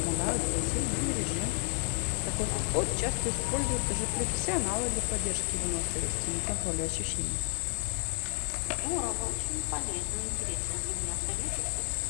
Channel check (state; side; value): quieter; right; 39.0 dB